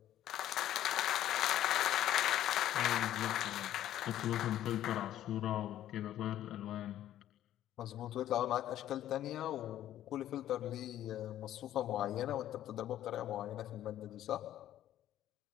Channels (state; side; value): quieter; right; 12.4 dB